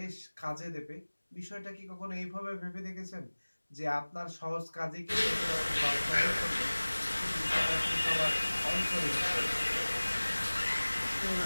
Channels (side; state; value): both; inverted; correlation -1.00